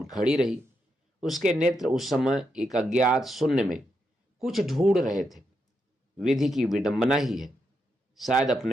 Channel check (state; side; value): normal; both; correlation 0.83